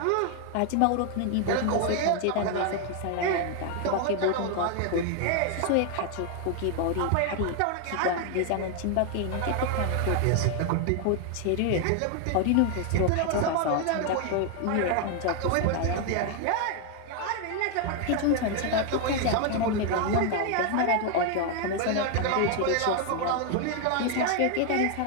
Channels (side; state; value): both; different; correlation 0.00